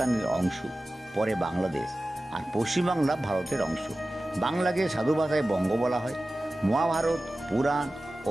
অংশ, পরে বাংলাদেশ, আর পশ্চিমবাংলা ভারতের অংশ। বাংলাকে সাধু ভাষায় বঙ্গ বলা হয়। মহাভারত, পুরাণ ও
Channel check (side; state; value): both; normal; correlation 0.96